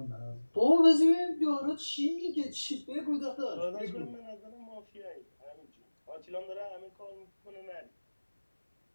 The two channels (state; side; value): inverted; both; correlation -1.00